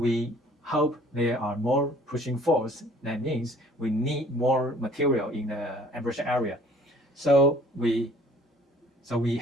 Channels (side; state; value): both; normal; correlation 0.54